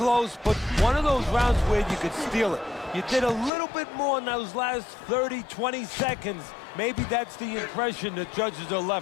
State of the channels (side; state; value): right; drops out; at 3.5 s